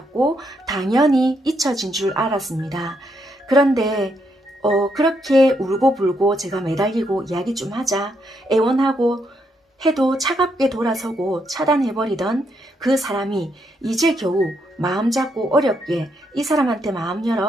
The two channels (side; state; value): both; normal; correlation 0.77